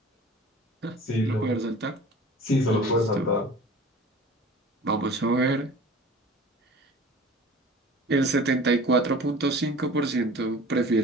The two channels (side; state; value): both; normal; correlation 0.43